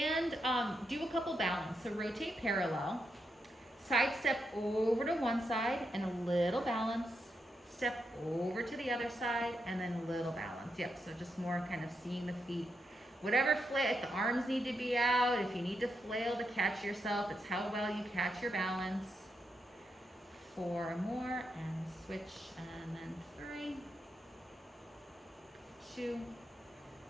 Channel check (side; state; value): both; normal; correlation 0.83